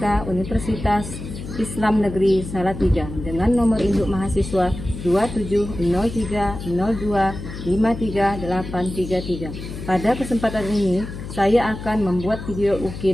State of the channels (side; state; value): left; noise; hum, 10 dB below the sound